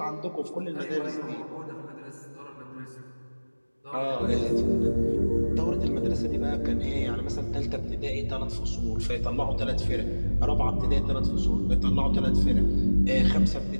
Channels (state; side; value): inverted; both; correlation -1.00